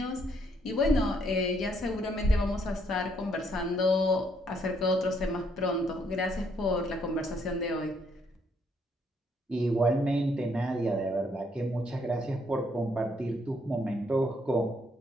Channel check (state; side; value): normal; both; correlation 0.71